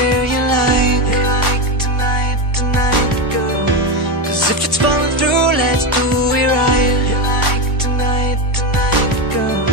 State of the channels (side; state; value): both; normal; correlation 0.13